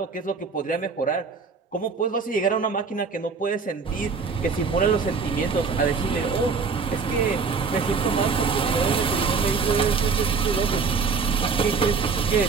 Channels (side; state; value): left; quieter; 5.1 dB